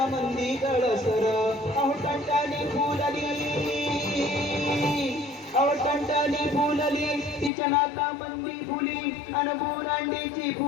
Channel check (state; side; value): drops out; right; at 7.5 s